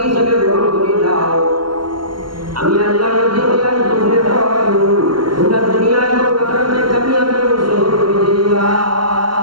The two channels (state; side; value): late; left; 0.72 ms